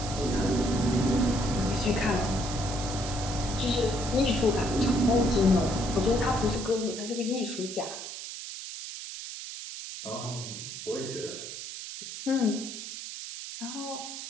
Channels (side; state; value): right; noise; hiss, 9 dB below the sound